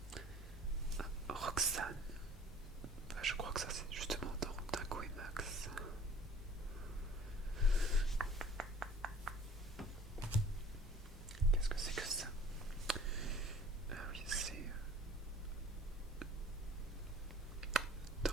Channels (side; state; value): both; normal; correlation 0.50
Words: Ah, Roxane. Ah, je crois que ça c'est justement dans Dingo et Max. Qu'est-ce que c'est que ça? Ah oui, c'est dans